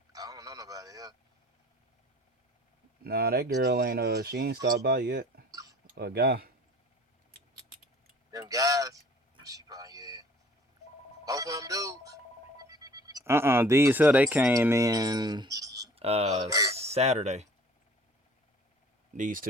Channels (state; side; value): normal; both; correlation 0.50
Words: I don't know nobody else. Nah, that girl ain't she ain't stopped by yet. A guy. Them guys, she probably both of them dudes. These here they came in Oh, Saturday. These